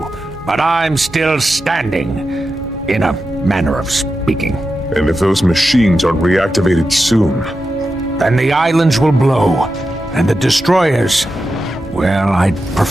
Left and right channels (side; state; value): both; normal; correlation 0.90